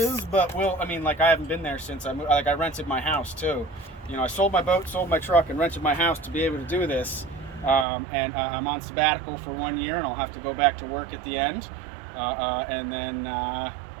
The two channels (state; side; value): drops out; left; at 7.9 s